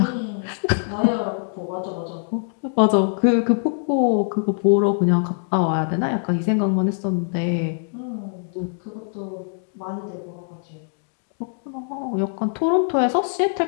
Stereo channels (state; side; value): silent; right; digital silence